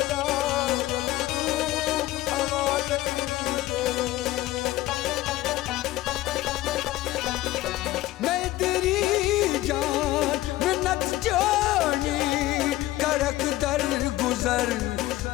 करक दर गुजर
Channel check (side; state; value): right; quieter; 16.6 dB